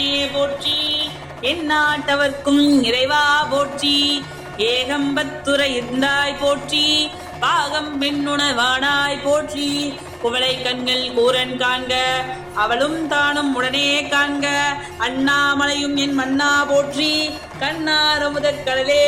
போற்றி, எந்நாட்டவர்க்கும் இறைவா போற்றி, ஏகம்பத்துரை இருந்தாய் போற்றி, பாகம் பெண்ணுணர்வானாய் போற்றி, குவளை கண்கள் கூரன் காண்க அவளும் தானும் உடனே காண்க, அண்ணாமலையும் என் மன்னா போற்றி, கண்ணார முதற்கடலே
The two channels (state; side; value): identical; both; correlation 1.00